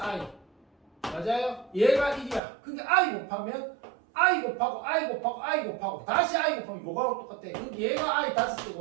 맞아요? 얘가 1이야. 그러니까 I 곱하면 I 곱하고 I 곱하고 I 곱하고 다시 I 곱하면 요거하고 똑같아. 그러니까 얘가 I 5제곱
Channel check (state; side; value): drops out; left; at 2.4 s